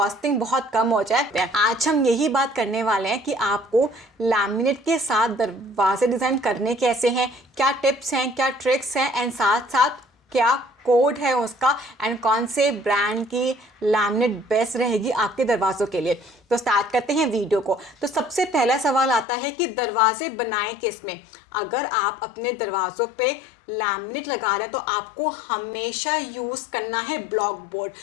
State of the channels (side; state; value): right; drops out; at 19.2 s